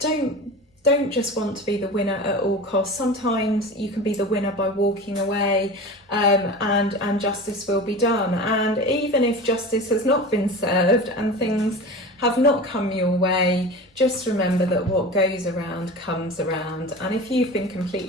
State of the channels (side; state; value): both; normal; correlation 0.32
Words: just want to be the winner at all costs. Sometimes you can be the winner by walking away, and justice will be done. And even if justice has not been served and things have not come your way, just remember that what goes around comes around. And if you've been